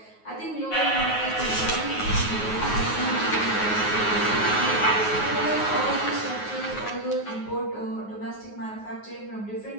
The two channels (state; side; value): late; right; 9.4 ms